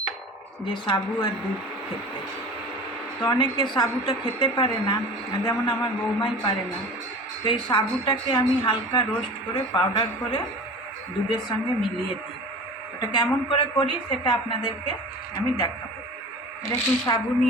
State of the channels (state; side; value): normal; both; correlation 0.37